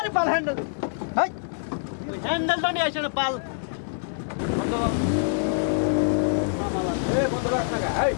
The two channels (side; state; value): right; silent; digital silence